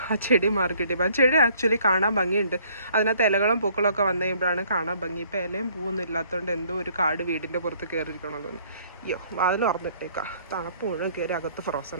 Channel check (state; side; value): inverted; both; correlation -0.60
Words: ആ ചെടി മാർക്കിട്ടിപ്പോൾ ആ ചെടി ആക്ച്വലി കാണാൻ ഭംഗിയുണ്ട്. അതിനകത്ത് ഇലകളും പൂക്കളും ഒക്കെ വന്നു കഴിയുമ്പോഴാണ് കാണാൻ ഭംഗി. ഇപ്പോൾ ഇലയും പൂവൊന്നും ഇല്ലാത്തതുകൊണ്ട് എന്തോ ഒരു കാട് വീടിൻ്റെ പുറത്ത് കയറിയിരിക്കണമെന്ന്. അയ്യോ, വാതിൽ തുറന്നിട്ടേക്കാം. തണുപ്പ് മുഴുവൻ കയറി അകത്ത്